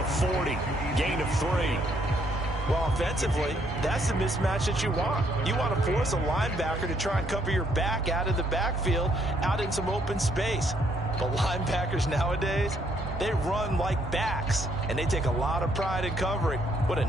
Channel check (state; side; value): normal; both; correlation 0.70